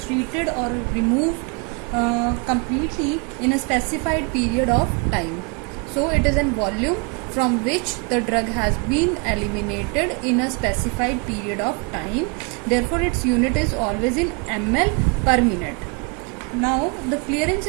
or removed completely in a specified period of time. So it is a volume from which the drug has been eliminated in a specified period of time. Therefore, its unit is always in ml per minute. Now, the clearance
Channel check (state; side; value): quieter; left; 33.4 dB